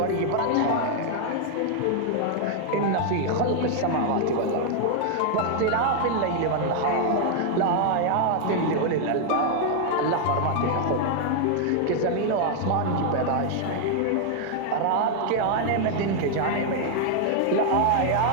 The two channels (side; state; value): both; different; correlation 0.00